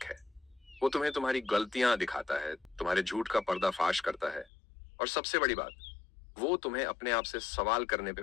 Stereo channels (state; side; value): drops out; right; at 4.5 s